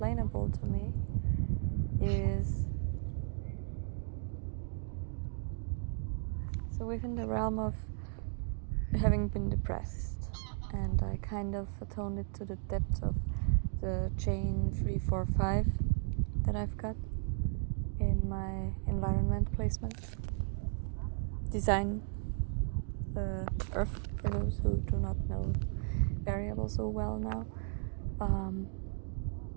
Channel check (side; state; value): left; silent; 54 dB below the other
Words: to me, is so within the realm of having been depressed, and I kind of atoned it to the depth of the chain 345 that I've got in my environment placement design, Earth, for those who do not know variables so well now.